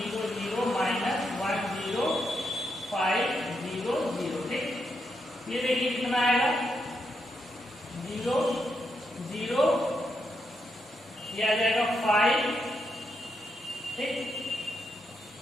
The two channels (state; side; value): normal; both; correlation 0.81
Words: माइनस 10500, ठीक। ये देखिए कितना आएगा 0 0, ये आ जाएगा 5, ठीक,